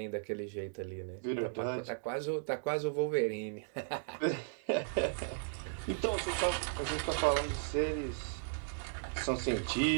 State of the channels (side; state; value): left; silent; digital silence